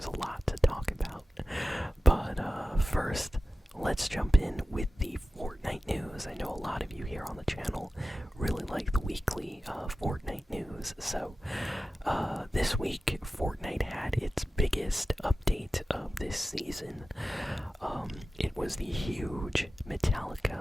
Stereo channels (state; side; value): normal; both; correlation 0.95